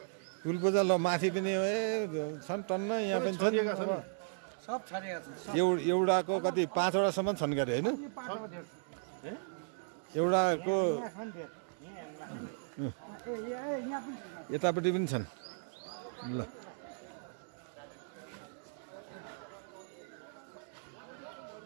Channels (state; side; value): silent; left; digital silence